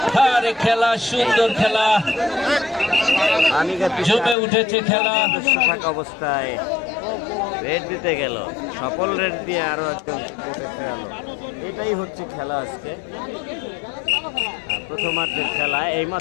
আরে খেলা, সুন্দর খেলা, জমে উঠেছে খেলা। থাকা অবস্থায় রেড দিতে গেল, সকল রেড দিয়ে আরো একজন কোর্টে ফেরালো। এটাই হচ্ছে খেলা আজকে, প্রথমার্ধের খেলা।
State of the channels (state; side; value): drops out; right; at 4.4 s